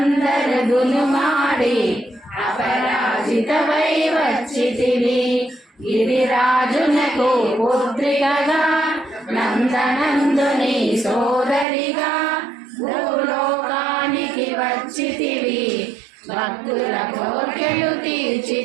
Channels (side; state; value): left; drops out; at 11.7 s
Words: దునుమాడి అపరాజితవై వచ్చితివి. గిరిరాజునకు పుత్రికగా నందనందుని సోదరిగా భూలోకానికి వచ్చితివి. భక్తుల కోర్కెలు